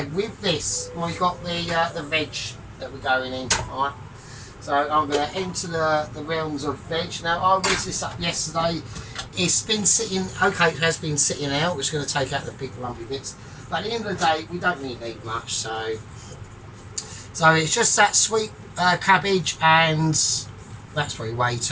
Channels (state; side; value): identical; both; correlation 1.00